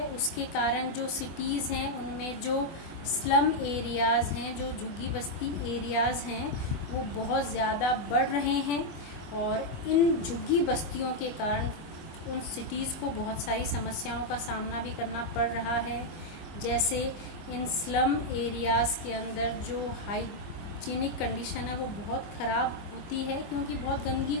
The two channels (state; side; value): late; right; 24 ms